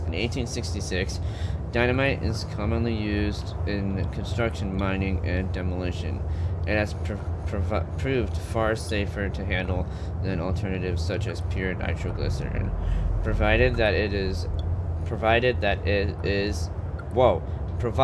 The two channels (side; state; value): both; identical; correlation 1.00